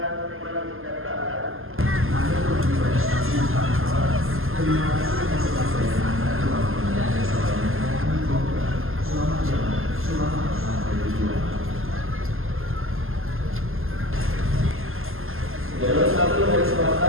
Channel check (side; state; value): left; late; 0.61 ms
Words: Jalur 1 dari